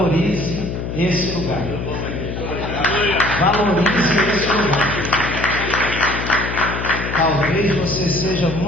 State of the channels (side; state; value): left; noise; hum, 5 dB below the sound